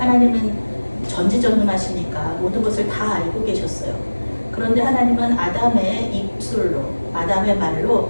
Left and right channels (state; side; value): inverted; both; correlation -1.00